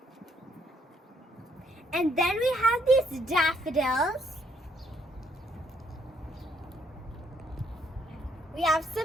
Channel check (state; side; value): normal; both; correlation 0.70